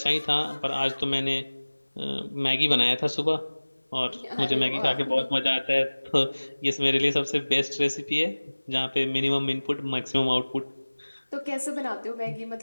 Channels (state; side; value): inverted; both; correlation -1.00